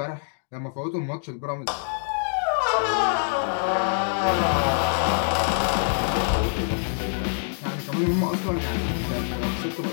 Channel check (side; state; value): right; silent; digital silence